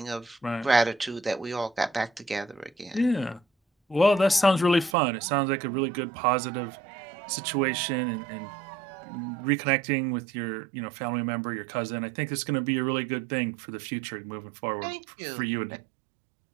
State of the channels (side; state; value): left; drops out; at 5.0 s